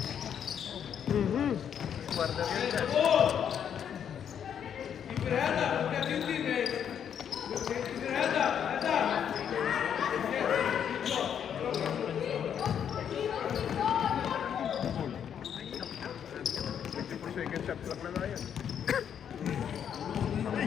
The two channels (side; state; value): right; quieter; 8.6 dB